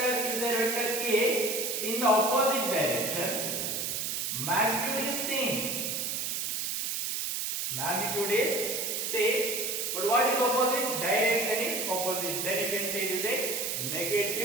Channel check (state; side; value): noise; right; hiss, 1 dB below the sound